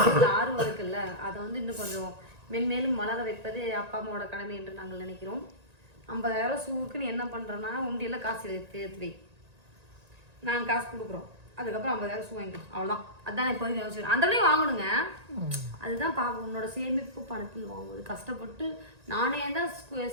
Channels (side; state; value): left; late; 1.9 ms